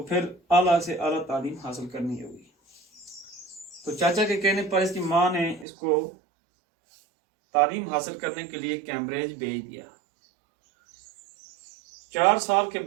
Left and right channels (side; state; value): left; drops out; at 5.7 s